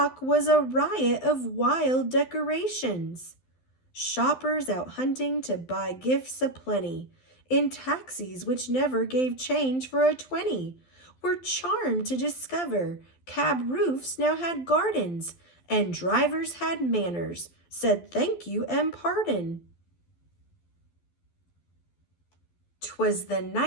was a riot of wild decorations. Shoppers out hunting to buy gifts aplenty, in taxis which never gave change for a 20, were charmed to discover cab roofs now had gardens, and drivers had manners, said thank you and pardon. 'Twas the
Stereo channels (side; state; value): right; late; 12 ms